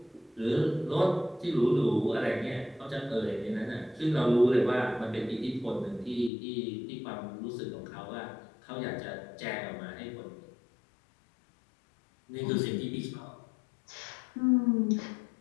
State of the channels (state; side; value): drops out; right; at 6.3 s